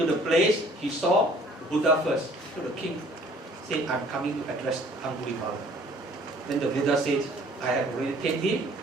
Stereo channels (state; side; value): normal; both; correlation 0.55